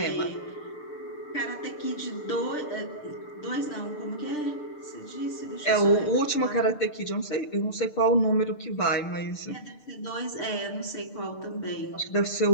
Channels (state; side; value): late; right; 6.7 ms